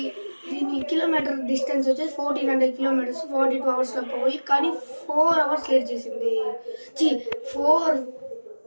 దీని కిలోమీటర్ డిస్టెన్స్ వచ్చేసి 1400 కిలోమీటర్స్, 42 అవర్స్లో పోవాలి. కానీ 4 అవర్స్ లేట్ చేసింది. 4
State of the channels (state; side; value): inverted; both; correlation -1.00